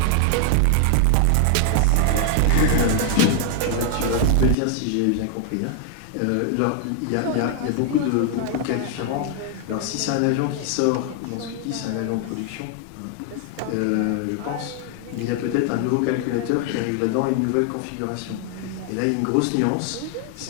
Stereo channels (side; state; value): both; different; correlation 0.00